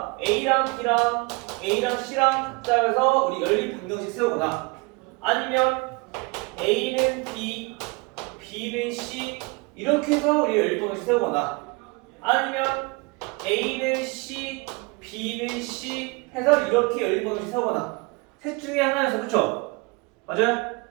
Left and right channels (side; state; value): left; quieter; 28.0 dB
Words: A랑 B랑 A랑 C랑 각자 해서 우리 연립 방정식 세우거나, 아니면 A는 B, B는 C 이렇게 해서 우리 연립 방정식 세우거나, 아니면 A는 C, B는 C 해서 이렇게 연립 방정식 세우거나, 셋 중에 하나에서, 그쵸? 맞아요?